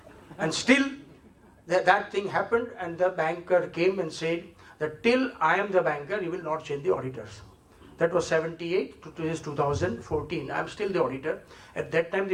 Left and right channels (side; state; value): both; identical; correlation 1.00